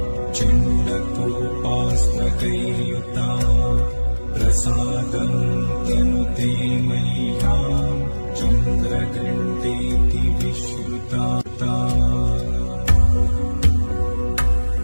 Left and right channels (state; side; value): inverted; both; correlation -1.00